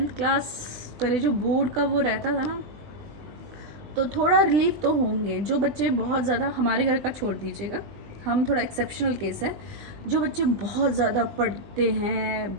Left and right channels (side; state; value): left; late; 20 ms